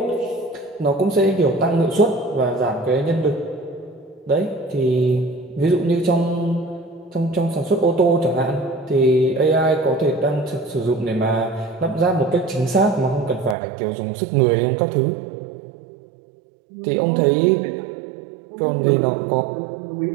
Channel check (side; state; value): left; drops out; at 13.6 s